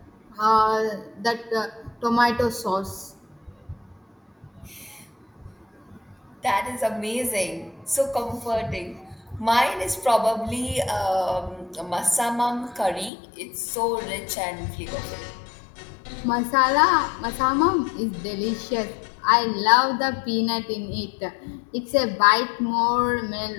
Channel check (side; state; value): right; drops out; at 13.1 s